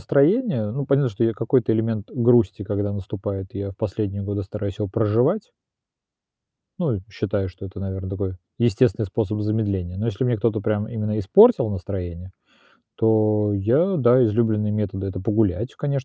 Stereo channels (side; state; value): both; identical; correlation 1.00